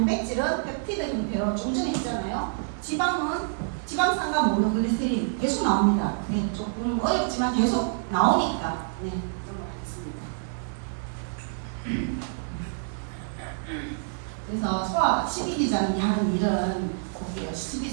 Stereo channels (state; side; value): silent; left; digital silence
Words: 펩티드 형태로 좀 전에 했잖아요. 지방은 지방산과 모노글리세린 계속 나옵니다. 네, 조금 어렵지만 계속 나오니까 넘어가겠습니다. 그래서 소화 12지장이 하는 일은 볼게요.